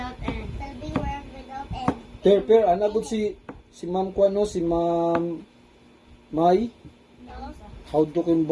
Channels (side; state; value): both; identical; correlation 1.00